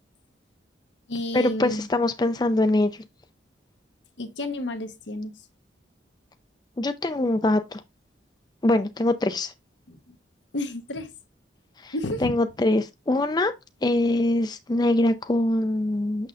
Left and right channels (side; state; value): both; normal; correlation 0.73